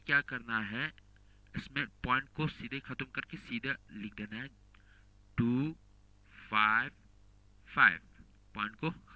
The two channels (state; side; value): identical; both; correlation 1.00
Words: क्या करना है, इसमें पॉइंट को सीधे खत्म करके सीधे लिख देना है 2 5 5, पॉइंट को